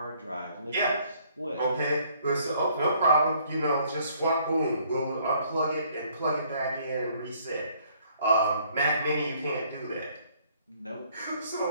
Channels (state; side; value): inverted; both; correlation -0.63